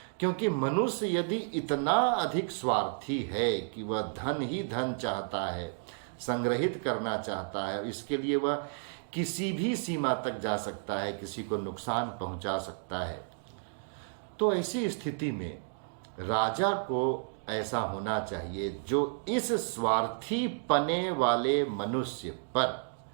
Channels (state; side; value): silent; left; 57 dB below the other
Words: क्योंकि मनुष्य यदि इतना अधिक स्वार्थी है कि वह धन ही धन चाहता है, संग्रहित करना चाहता है, इसके लिए वह किसी भी सीमा तक जा सकता है, किसी को नुकसान पहुंचा सकता है, तो ऐसी स्थिति में राजा को ऐसा होना चाहिए जो इस स्वार्थी पने वाले मनुष्य पर,